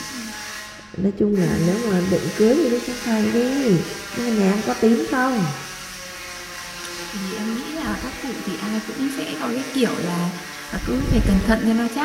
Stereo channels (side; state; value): both; identical; correlation 1.00